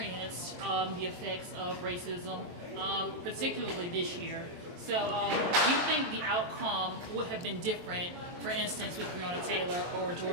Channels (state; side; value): late; left; 23 ms